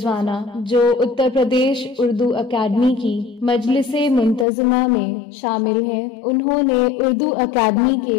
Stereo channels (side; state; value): right; drops out; at 4.5 s